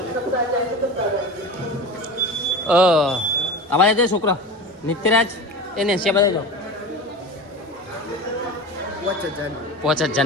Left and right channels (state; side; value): normal; both; correlation 0.31